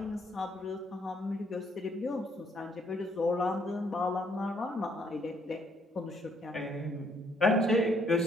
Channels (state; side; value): normal; both; correlation 0.68